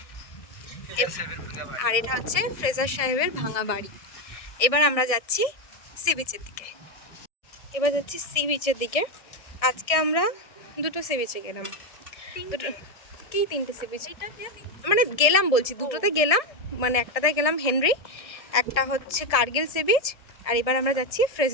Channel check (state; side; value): late; right; 1.7 ms